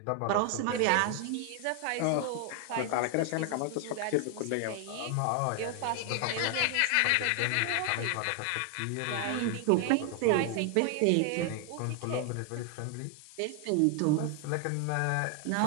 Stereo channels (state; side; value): different; both; correlation 0.00